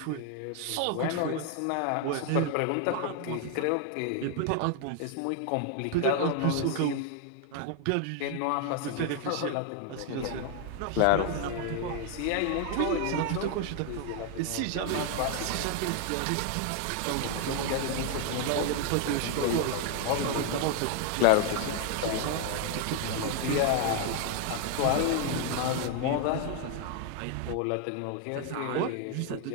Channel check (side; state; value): both; different; correlation 0.00